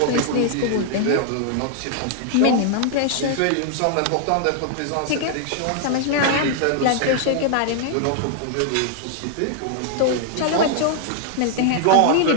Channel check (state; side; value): different; both; correlation 0.00